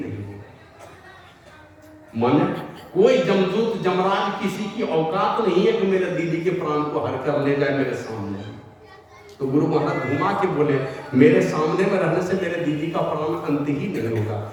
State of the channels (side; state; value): both; identical; correlation 1.00